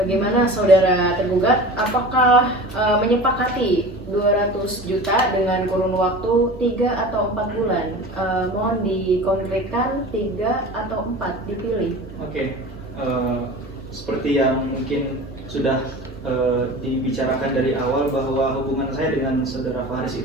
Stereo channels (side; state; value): both; normal; correlation 0.36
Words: saudara tergugat? Apakah menyepakati 200 juta dengan kurun waktu 3 atau 4 bulan? Mohon dikonkretkan 3 atau 4 dipilih. Oke, seperti yang mungkin sudah dibicarakan dari awal bahwa hubungan saya dengan saudara Faris